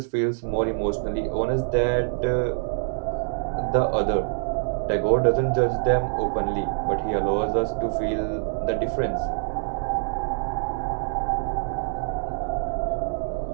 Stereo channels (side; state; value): left; silent; digital silence